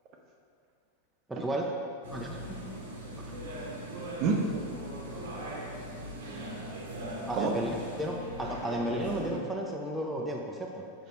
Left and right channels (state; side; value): normal; both; correlation 0.25